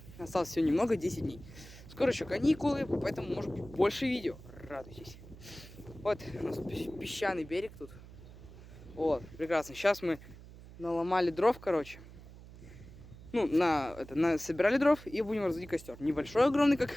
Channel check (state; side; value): noise; right; hum, 17 dB below the sound